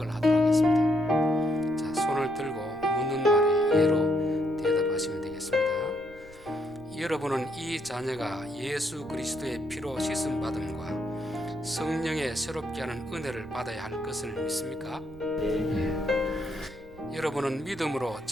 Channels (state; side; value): noise; right; rumble, 22 dB below the sound